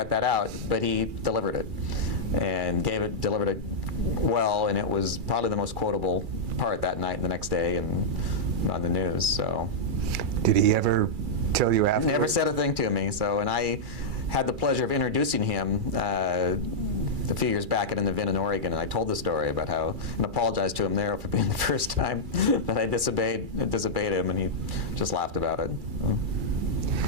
that out? But he delivered it, and delivered it well, and it was probably the most quotable part that night and the next day and on the news. So, did he ever tell you after? Never said a thing to me. So, and I had the pleasure of introducing him a few years back at an event in Oregon, and I told the story about how, and apologized to him there for being the first time that I disobeyed him, and he just laughed about it.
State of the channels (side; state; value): left; late; 2.3 ms